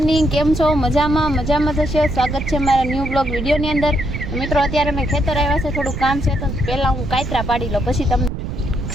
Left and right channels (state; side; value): noise; right; rumble, 5 dB below the sound